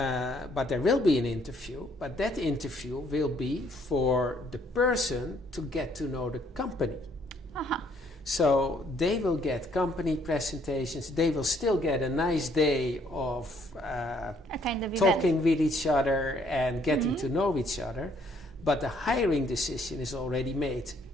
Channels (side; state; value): both; normal; correlation 0.66